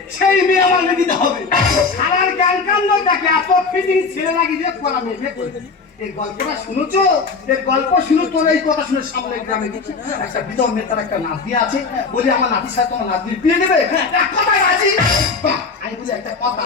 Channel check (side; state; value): right; quieter; 4.6 dB